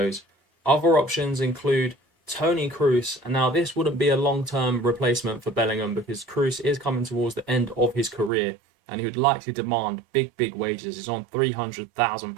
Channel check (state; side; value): drops out; left; at 8.3 s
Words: Other options include Toni Kroos. And now this wouldn't be a long-term replacement for Bellingham, because Kroos is coming towards the end of his career, and he would likely demand big wages. He's on